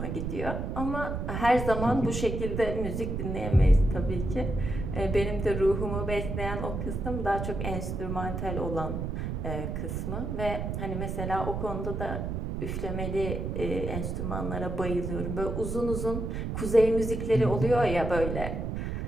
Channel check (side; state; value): right; noise; rumble, 3 dB below the sound